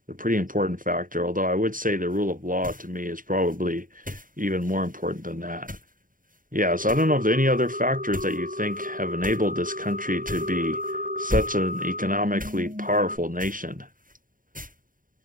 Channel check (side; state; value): left; late; 0.40 ms